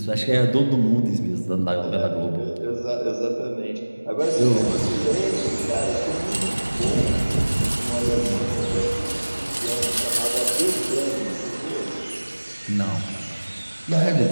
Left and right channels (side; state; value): both; inverted; correlation -1.00